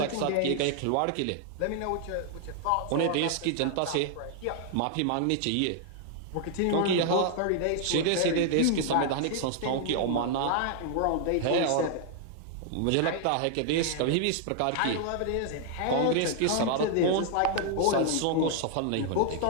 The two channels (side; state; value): both; different; correlation 0.00